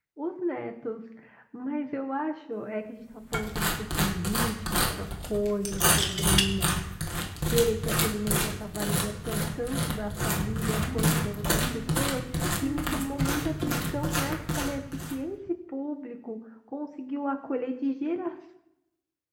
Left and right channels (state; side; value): identical; both; correlation 1.00